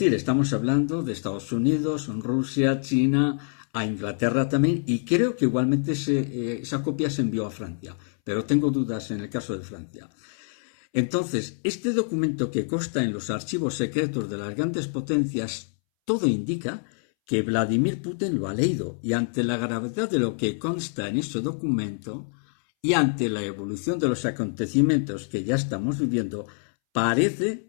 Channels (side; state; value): right; silent; 61 dB below the other